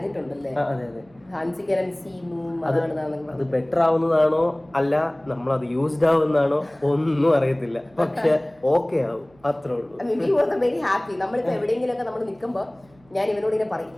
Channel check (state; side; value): noise; right; hum, 30 dB below the sound